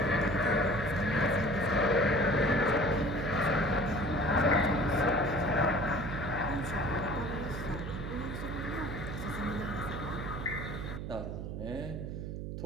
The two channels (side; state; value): right; noise; hum, 6 dB below the sound